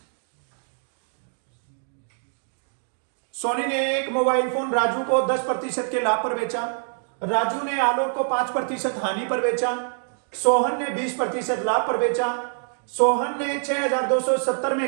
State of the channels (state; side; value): silent; left; 62 dB below the other